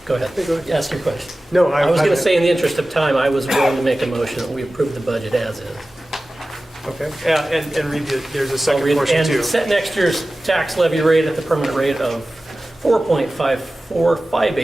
go ahead. Go ahead. Ask your question. No, I was going to say, in the interest of time, I was willing to make a motion that we approve the budget as is. Okay, yeah, and read there's a I'll second read- portion too. And set next year's tax levy rate at the permanent rate of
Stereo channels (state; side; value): normal; both; correlation 0.96